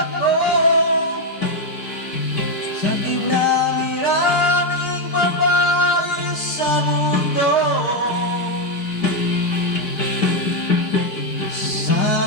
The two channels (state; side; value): late; right; 4.8 ms